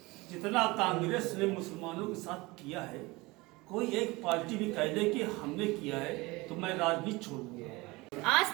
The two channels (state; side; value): quieter; left; 22.8 dB